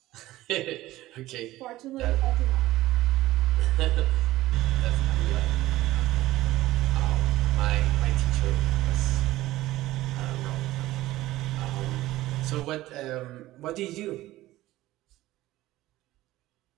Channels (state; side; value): quieter; left; 16.5 dB